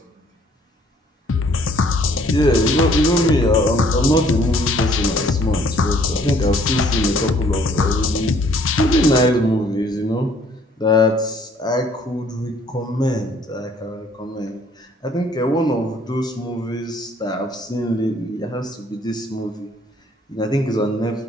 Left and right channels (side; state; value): both; normal; correlation 0.60